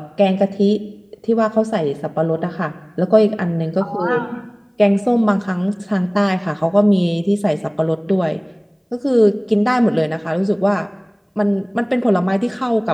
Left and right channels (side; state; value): both; identical; correlation 1.00